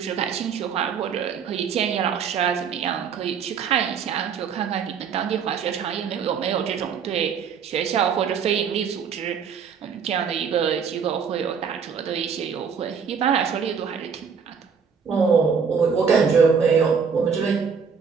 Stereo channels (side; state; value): left; quieter; 6.4 dB